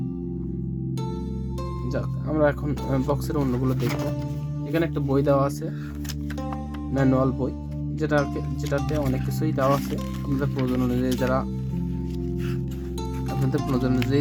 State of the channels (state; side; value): identical; both; correlation 1.00